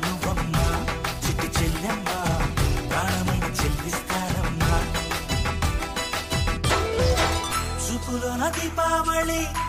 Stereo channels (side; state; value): both; identical; correlation 1.00